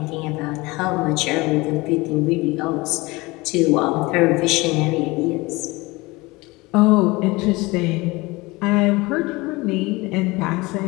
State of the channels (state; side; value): quieter; right; 22.7 dB